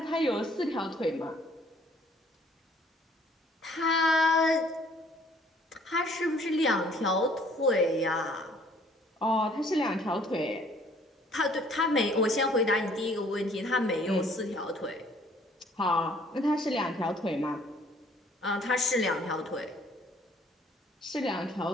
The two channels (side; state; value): both; normal; correlation 0.59